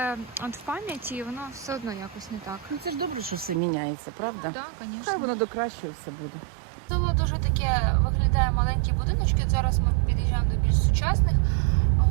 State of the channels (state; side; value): drops out; left; at 3.6 s